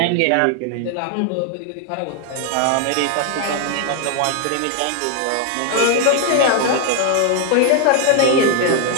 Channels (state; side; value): different; both; correlation 0.00